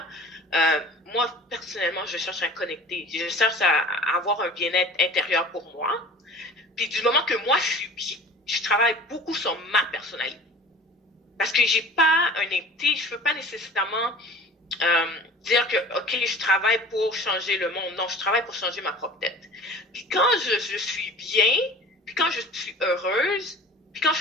Moi, personnellement, je cherche à connecter. Je cherche à avoir un bien-être intérieur pour moi. Puis du moment que moi, je suis bien, je travaille beaucoup sur ma personnalité. Parce que j'ai pas un été, je veux pas nécessairement dire que, OK, je travaille pour changer le monde. Non, je travaille pour changer ma propre tête. Puis quand je suis bien, puis quand je suis heureuse, puis quand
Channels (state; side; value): normal; both; correlation 0.43